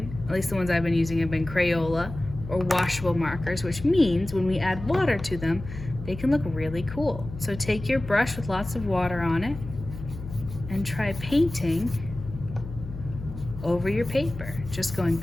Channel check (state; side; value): noise; left; hum, 11 dB below the sound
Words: at least the ones I've been using, have been Crayola or washable markers, which means when we add water to them, they can look really cool. So take your brush with lots of water on it and try painting over your paper. Just going